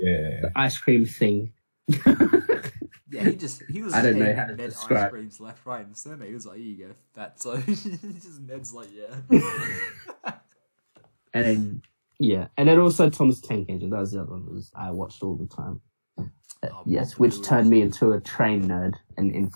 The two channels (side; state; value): both; inverted; correlation -1.00